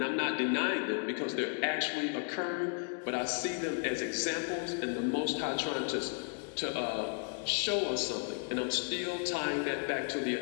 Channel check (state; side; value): quieter; right; 38.3 dB